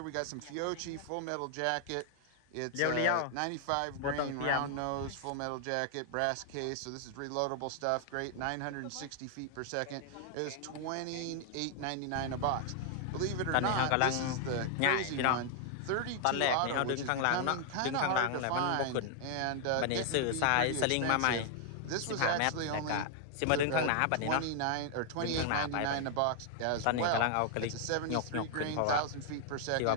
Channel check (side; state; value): both; different; correlation 0.00